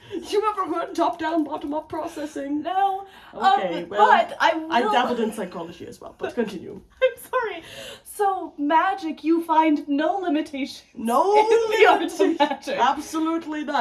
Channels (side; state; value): both; identical; correlation 1.00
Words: You ever heard top-down, bottom-up processing? No. Okay, well, but I will. I dabbled in psychology as well, but continue. I'm sorry. So magic, you find no limitation. No in the art of limitations. magic. Absolutely